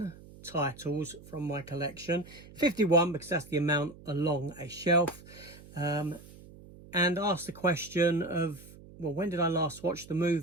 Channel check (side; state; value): right; noise; hum, 19 dB below the sound